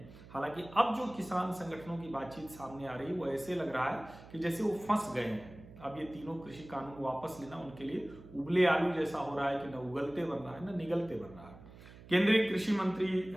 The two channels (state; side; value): noise; right; hum, 18 dB below the sound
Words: हालांकि अब जो किसान संगठनों की बातचीत सामने आ रही है, वो ऐसे लग रहा है कि जैसे वो फंस गए हैं। अब ये तीनों कृषि कानून वापस लेना उनके लिए उबले आलू जैसा हो रहा है कि न उगलते बन रहा है न निगलते बन रहा है। केंद्रीय कृषि मंत्री